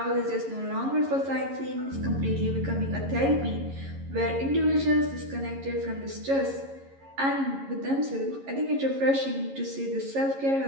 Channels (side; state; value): left; late; 11 ms